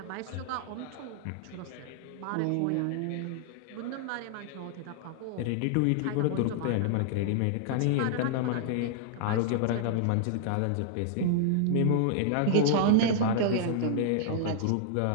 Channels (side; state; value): both; different; correlation -0.01